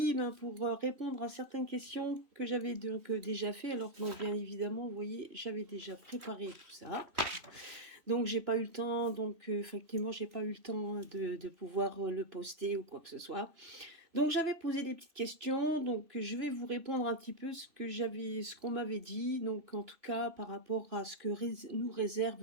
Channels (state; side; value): late; left; 3.0 ms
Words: pour répondre à certaines questions que j'avais donc déjà fait, alors que bien évidemment, vous voyez, j'avais déjà préparé tout ça. Donc j'ai pas eu le temps, donc effectivement j'ai pas eu le temps de pouvoir le poster ou quoi que ce soit. Donc j'avais posé des petites questions, donc je vais vous répondre un petit peu ce qu'on m'avait dit, donc en tout cas par rapport à ce que nous